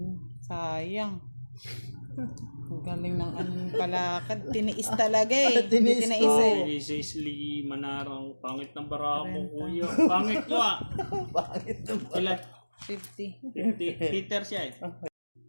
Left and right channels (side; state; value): both; inverted; correlation -1.00